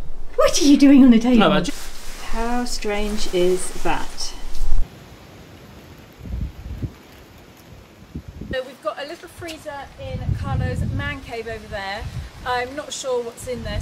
What are you doing on the table? No, ma... How strange is that? So we've got a little freezer in Carlo's man cave over there. I'm not sure what's in there,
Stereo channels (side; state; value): both; identical; correlation 1.00